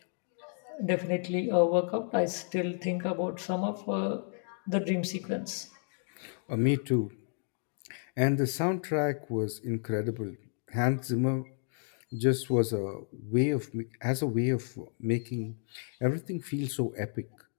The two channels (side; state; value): right; silent; 57 dB below the other